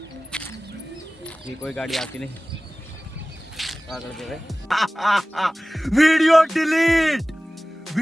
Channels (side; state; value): both; normal; correlation 0.98